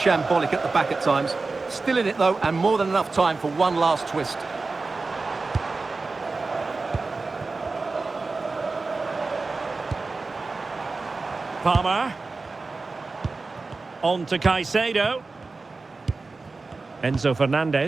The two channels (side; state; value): left; quieter; 3.8 dB